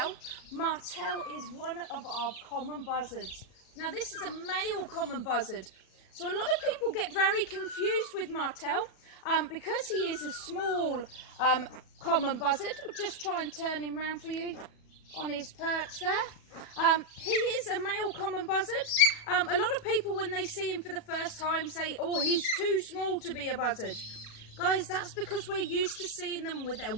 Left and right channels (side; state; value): right; late; 37 ms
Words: Martel is one of our common buzzards. Now this is a male common buzzard, so a lot of people get very confused with Martel because he is a small common buzzard. I'll just try and turn him round for you on his perch there. He is a male common buzzard. A lot of people, when they see him for the first time, say, oh, he's too small to be a buzzard. Guys, that's because we're used to seeing them with their